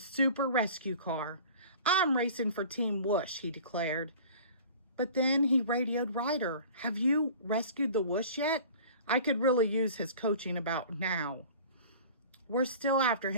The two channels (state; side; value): inverted; both; correlation -0.43